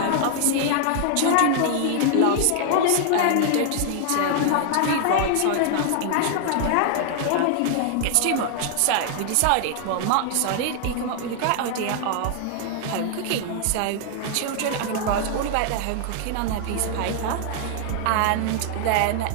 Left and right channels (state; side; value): different; both; correlation 0.00